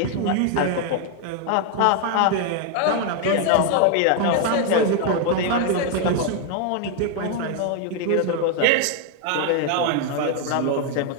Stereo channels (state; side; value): different; both; correlation 0.00